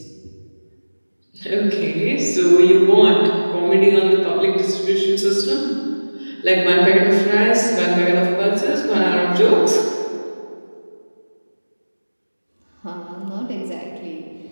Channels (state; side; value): inverted; both; correlation -1.00